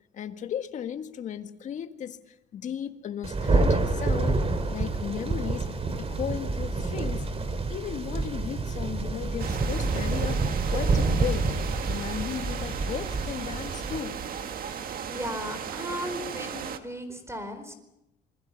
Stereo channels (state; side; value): normal; both; correlation 0.67